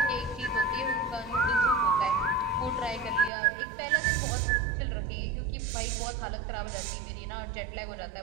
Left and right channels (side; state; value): left; drops out; at 3.3 s